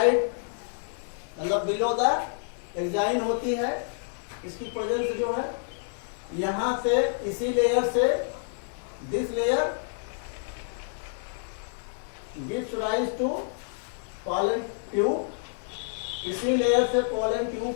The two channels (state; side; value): silent; right; 59 dB below the other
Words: मतलब below the enzyme होती है। इसकी presence जो है यहां से, इसी लेयर से, this layer gives rise to pollen tube. इसी लेयर से पॉलन ट्यूब